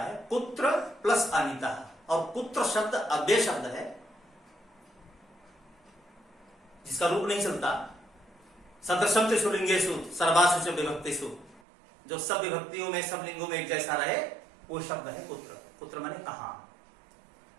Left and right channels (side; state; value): left; drops out; at 11.6 s